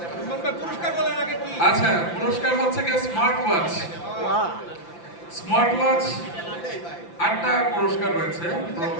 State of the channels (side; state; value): right; late; 5.9 ms